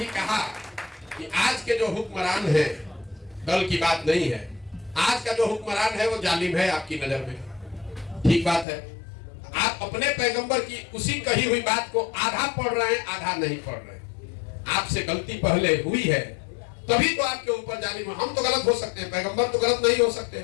कहा कि आज के जो हुक्मरान हैं, कल की बात नहीं है, आज का जो हुक्मरान है वो जालिम है आपकी नजर में। ठीक बात है, आप अपने पैगंबर की उसी कही हुई बात को आधा पढ़ रहे हैं, आधा नहीं पढ़ रहे हैं। आपसे गलती पहले हुई है तभी तो आपके ऊपर जालिम। हम तो गलत हो सकते हैं, पैगंबर तो गलत नहीं हो सकते।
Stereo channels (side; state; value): right; drops out; at 8.7 s